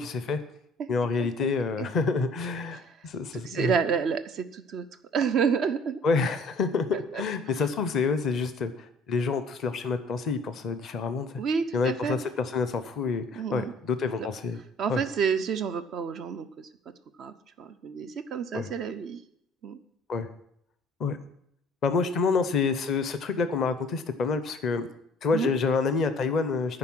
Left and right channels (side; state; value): both; normal; correlation 0.53